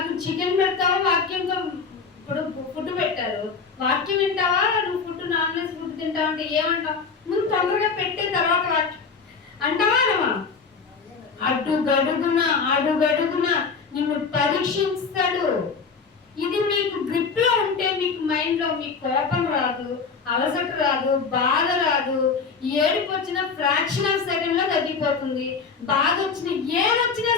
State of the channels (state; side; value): quieter; right; 5.2 dB